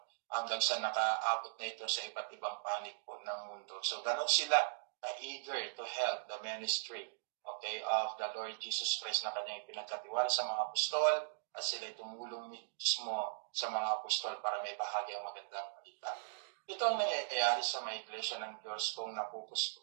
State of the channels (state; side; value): silent; left; digital silence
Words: hanggang sa nakaabot na ito sa iba't ibang panig po ng mundo. So ganon sila eager to help the ministry of the Lord Jesus Christ na kanyang pinagkatiwala sa mga apostol at sila tumulong mismo sa mga apostol para may bahagi ang magandang balita. Ito ang nangyayari sa mga iglesia ng Diyos kung